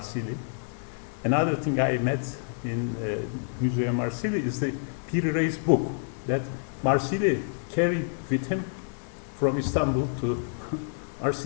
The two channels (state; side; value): silent; right; digital silence